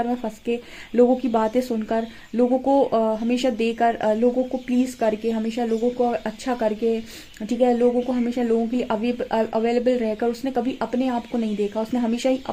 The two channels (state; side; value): identical; both; correlation 1.00